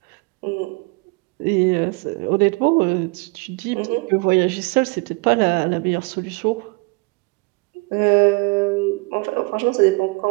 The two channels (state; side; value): quieter; left; 28.7 dB